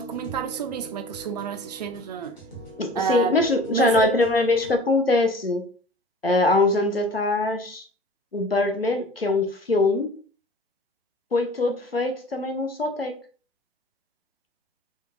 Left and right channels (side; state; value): both; normal; correlation 0.44